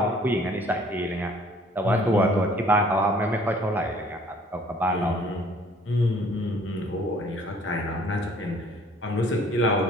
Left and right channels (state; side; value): normal; both; correlation 0.56